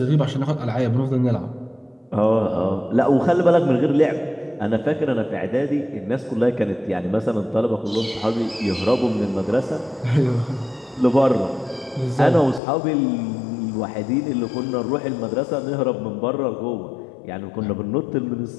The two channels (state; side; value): drops out; right; at 12.6 s